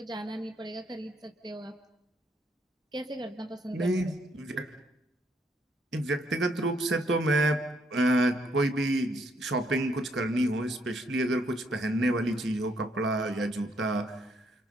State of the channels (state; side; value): normal; both; correlation 0.72